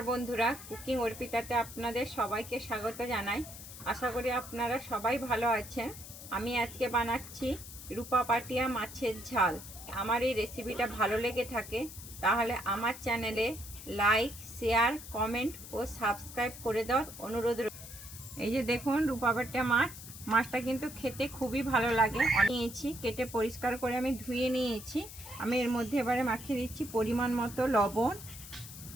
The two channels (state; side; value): noise; left; hiss, 13 dB below the sound